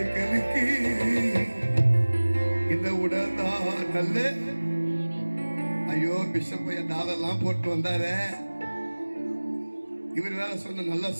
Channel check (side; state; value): both; inverted; correlation -1.00